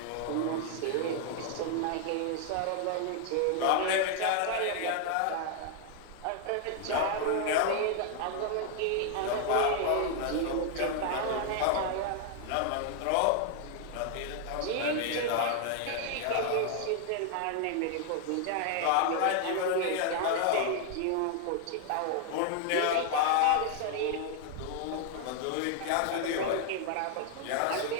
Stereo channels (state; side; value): different; both; correlation 0.00